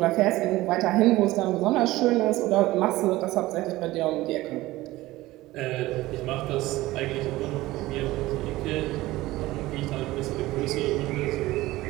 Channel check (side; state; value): left; quieter; 17.9 dB